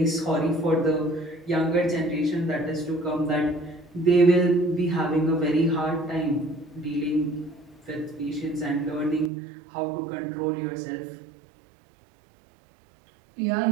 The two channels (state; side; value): drops out; left; at 9.3 s